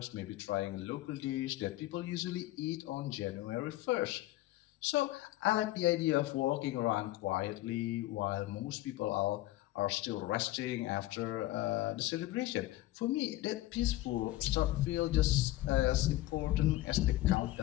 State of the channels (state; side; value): quieter; right; 16.5 dB